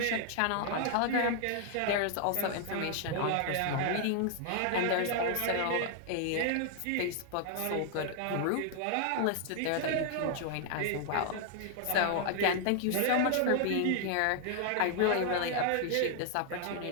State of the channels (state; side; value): different; both; correlation 0.00